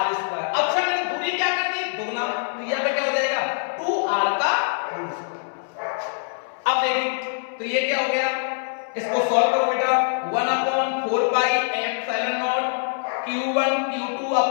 स्क्वायर। अच्छा मैंने दूरी क्या कर दी, दोगुना, तो यहां पे क्या हो जाएगा, 2R का होल स्क्वायर। अब देखिए तो ये क्या हो गया, इसको सॉल्व करो बेटा, 1/4 pi epsilon naught Q1 Q2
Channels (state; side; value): silent; right; 63 dB below the other